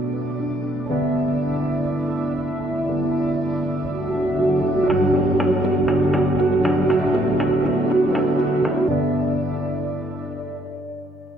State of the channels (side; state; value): both; normal; correlation 0.68